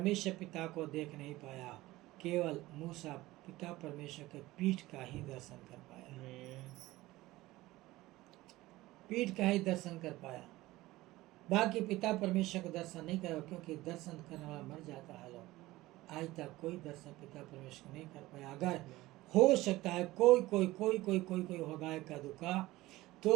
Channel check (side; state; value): left; quieter; 18.1 dB